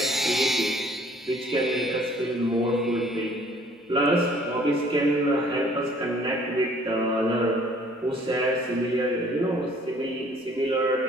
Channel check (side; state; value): both; normal; correlation 0.57